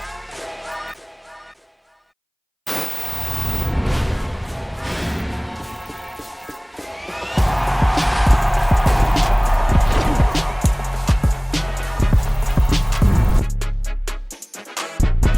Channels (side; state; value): both; identical; correlation 1.00